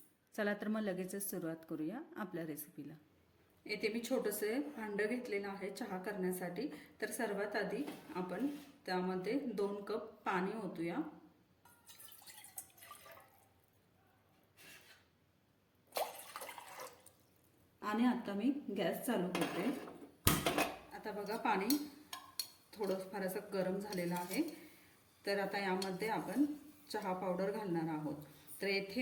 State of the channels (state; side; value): identical; both; correlation 1.00